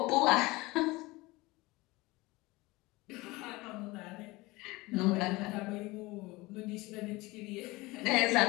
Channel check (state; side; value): quieter; right; 21.8 dB